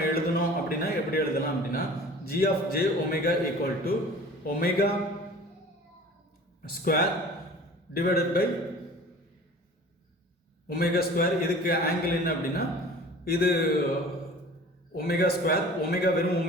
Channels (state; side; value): normal; both; correlation 0.43